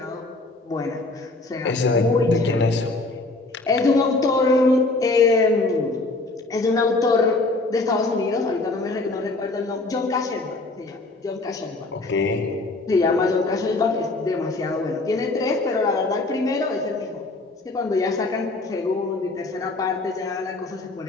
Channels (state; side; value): quieter; right; 3.2 dB